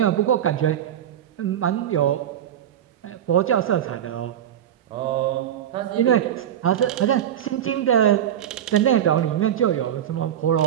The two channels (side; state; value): left; quieter; 10.3 dB